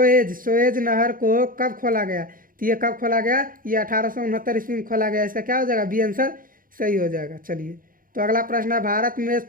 नहर को कब खोला गया? तो ये कब खोला गया? ये 1869 ईस्वी में खोला गया। इसका क्या हो जाएगा? बी आंसर सही हो जाएगा। चलिए, तो अगला प्रश्न है भारत में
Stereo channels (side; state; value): left; late; 0.41 ms